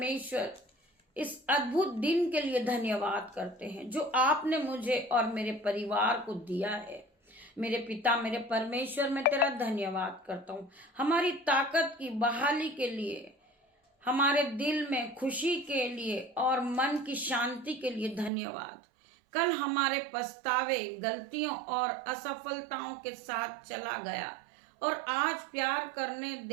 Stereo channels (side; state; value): left; drops out; at 18.3 s